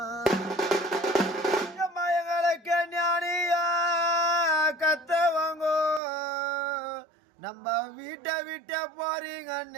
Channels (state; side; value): drops out; left; at 6.0 s